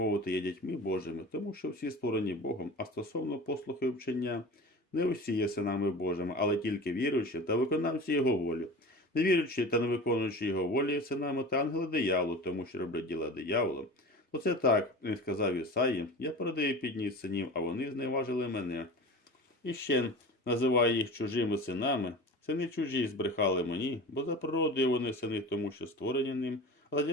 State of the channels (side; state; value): both; normal; correlation 0.35